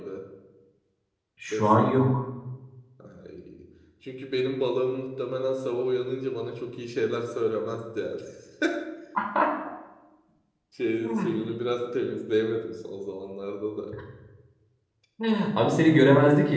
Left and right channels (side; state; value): both; identical; correlation 1.00